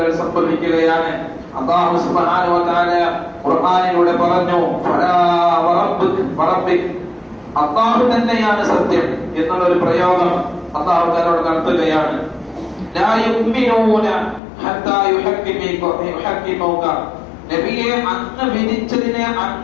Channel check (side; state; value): right; drops out; at 14.4 s